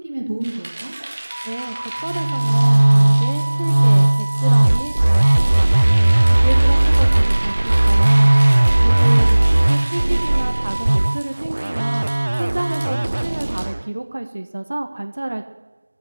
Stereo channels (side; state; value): both; inverted; correlation -1.00